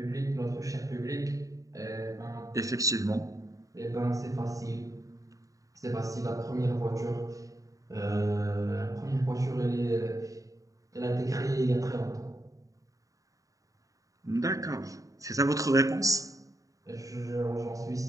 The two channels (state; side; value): late; left; 0.16 ms